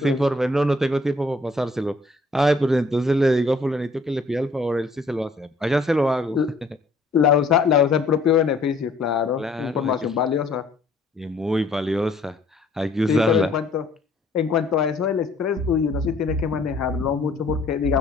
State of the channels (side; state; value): right; quieter; 3.0 dB